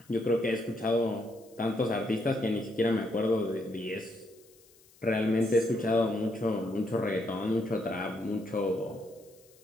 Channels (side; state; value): left; noise; hiss, 28 dB below the sound